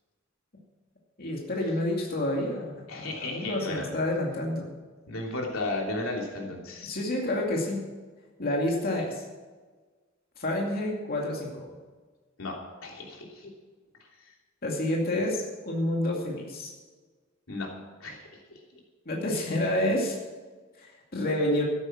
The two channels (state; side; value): normal; both; correlation 0.30